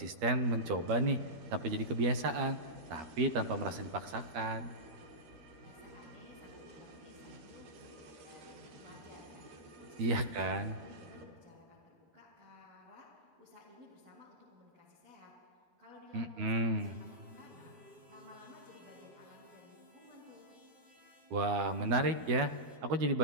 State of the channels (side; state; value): left; late; 12 ms